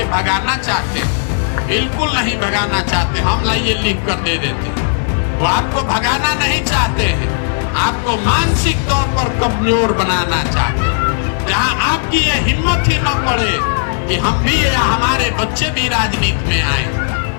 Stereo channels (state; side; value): silent; right; digital silence